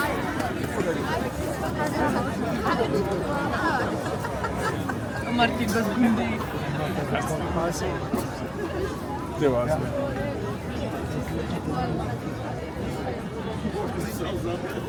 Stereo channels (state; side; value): identical; both; correlation 1.00